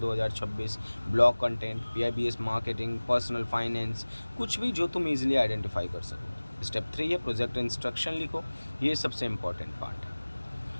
blog content, PIBS marketing, personal finance, कुछ भी जो तुम इजीली आइडेंटिफाई कर सको। स्टेप 3 है प्रोजेक्ट इंस्ट्रक्शन लिखो, ये सबसे इंपॉर्टेंट पार्ट है।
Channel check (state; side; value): inverted; both; correlation -1.00